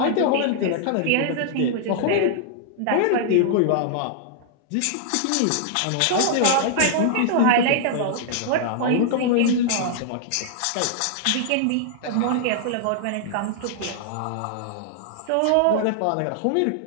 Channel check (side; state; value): both; different; correlation -0.01